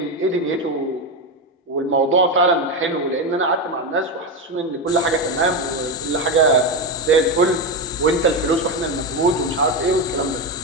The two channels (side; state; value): both; normal; correlation 0.12